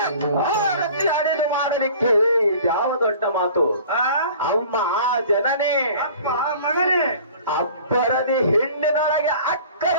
ಅಡಿದು ಮಾಡಲಿಕ್ಕೆ ಯಾವ ದೊಡ್ಡ ಮಾತು ಆ ಅಮ್ಮ ಜನನೇ ಅಪ್ಪ ಮಗನೇ ಅಬ್ಬರದಿ ಹಿಂಡಿನೊಳಗೆ ಅಕ್ಕರ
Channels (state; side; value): inverted; both; correlation -0.46